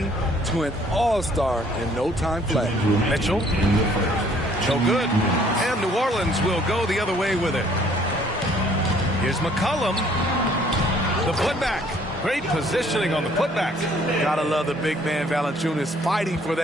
to an all-star in no time flat. Mitchell. No good. And New Orleans will go the other way with it. Here's McCollum. The putback. Great positioning on the putback. Gotta love the big man Valanciunas fighting for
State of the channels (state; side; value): normal; both; correlation 0.60